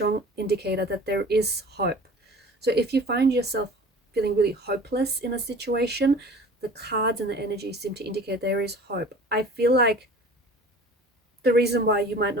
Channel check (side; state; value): both; normal; correlation 0.43